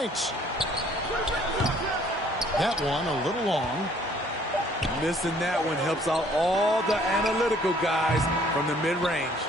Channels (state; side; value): normal; both; correlation 0.59